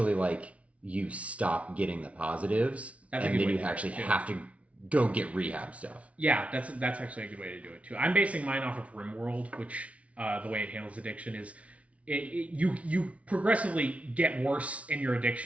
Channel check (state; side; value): late; left; 0.064 ms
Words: like you stop getting the positives, and then you actually have to go get rehab stuff. Yeah, that's actually a good way to do it too. I'm basing mine off of RimWorld, which the way it handles addiction is you progressively get worse in your